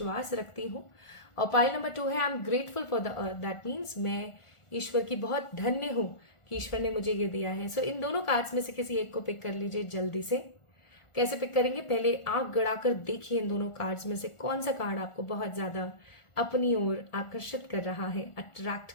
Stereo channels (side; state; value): right; late; 1.4 ms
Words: रखती हूँ। और पाइल नंबर 2 है, I am grateful for the earth, that means मैं ईश्वर की बहुत धन्य हूं कि ईश्वर ने मुझे ये दिया है। सो इन दोनों कार्ड्स में से किसी एक को पिक कर लीजिए जल्दी से। कैसे पिक करेंगे, पहले आंख गड़ाकर देखिए इन दोनों कार्ड्स में से कौन सा कार्ड आपको बहुत ज्यादा अपनी ओर आकर्षित कर रहा है, अट्रैक्ट